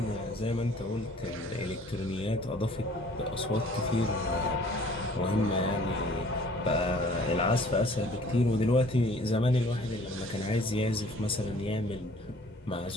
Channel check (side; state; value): both; normal; correlation 0.53